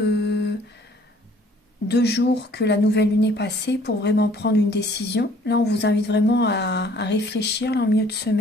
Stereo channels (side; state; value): both; normal; correlation 0.57